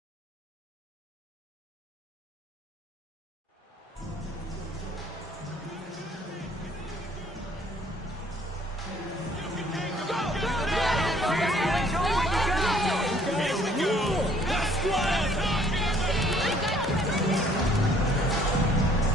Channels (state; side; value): normal; both; correlation 0.60